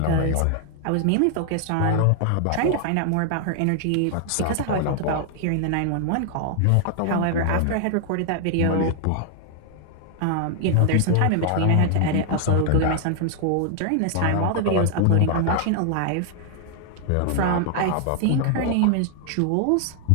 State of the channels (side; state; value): both; different; correlation 0.00